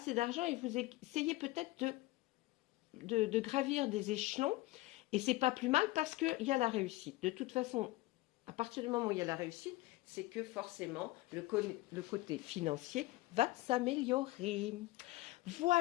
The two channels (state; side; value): quieter; right; 19.4 dB